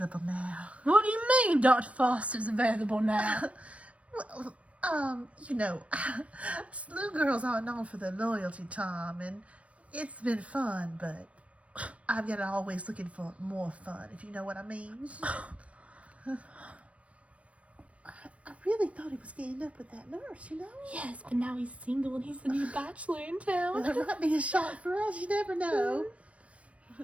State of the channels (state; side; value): late; left; 0.064 ms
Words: now. What do you mean Dr. Foster's available now? Well, you know, SLU girls aren't known for their loyalty, Tom, and it's been fun, but I've got always looking for more fun, if you know what I mean. I really thought he was getting up with that nurse, you know? Yes, but now he's single and he's the new bachelor in Well, town. there might be a shot for us, you never know.